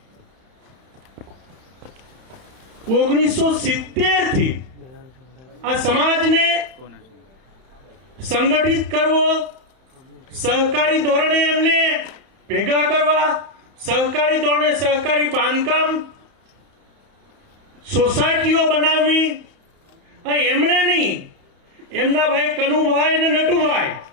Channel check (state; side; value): late; left; 31 ms